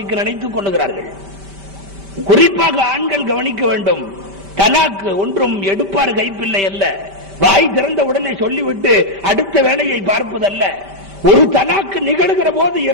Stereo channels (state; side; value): late; left; 5.1 ms